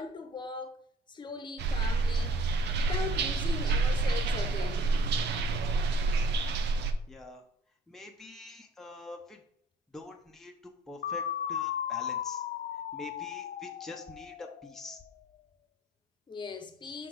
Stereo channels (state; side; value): normal; both; correlation 0.51